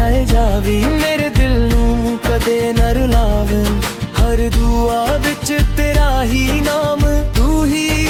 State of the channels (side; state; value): both; identical; correlation 1.00